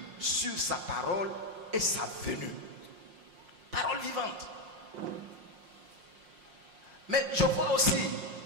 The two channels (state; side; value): late; left; 5.6 ms